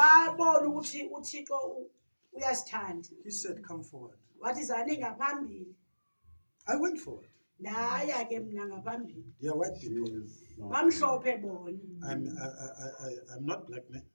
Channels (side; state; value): both; inverted; correlation -1.00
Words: ukuthi uThixo uyasithanda. He said, come forward. Wathi zani ngaphambili. I went forward. Ndaya ke mna ngaphambili. They are white people. Bamhlophe bona. I'm not black, man.